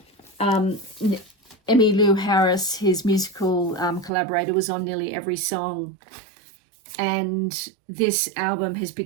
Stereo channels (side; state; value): left; drops out; at 4.1 s